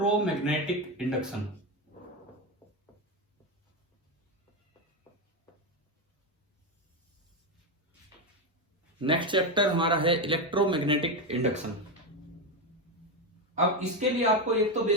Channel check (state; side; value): normal; both; correlation 0.11